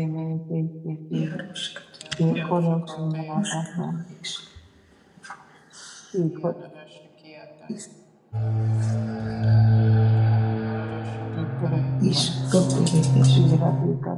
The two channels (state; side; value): identical; both; correlation 1.00